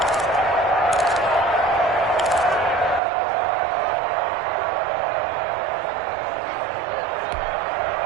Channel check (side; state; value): left; drops out; at 3.0 s